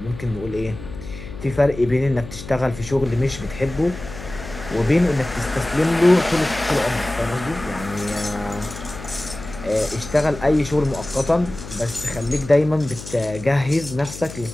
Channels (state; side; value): noise; left; hum, 13 dB below the sound